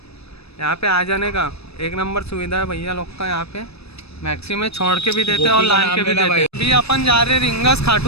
यहाँ पे आ जाने का एक नंबर सुविधा है भैया लोग का। यहाँ पे मैक्सी में छोड़ के भी देते हैं और लान के भी देते हैं। अभी अपन जा रहे रिंगस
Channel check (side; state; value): right; late; 0.78 ms